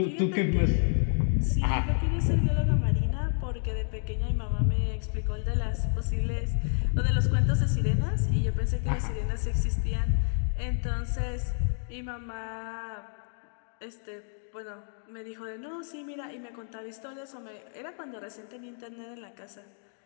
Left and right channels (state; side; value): silent; right; 58 dB below the other